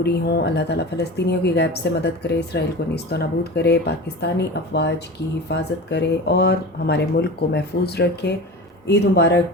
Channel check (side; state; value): both; normal; correlation 0.32